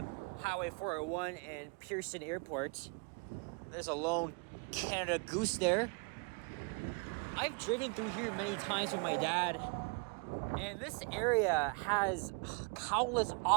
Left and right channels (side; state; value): left; quieter; 33.3 dB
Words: Highway 401 and Pearson Airport. There's a lone Canada Goose there. I've driven through here many times with my dad, and this area has countless